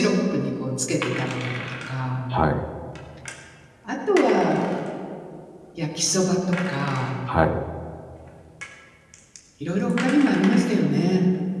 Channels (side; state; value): both; identical; correlation 1.00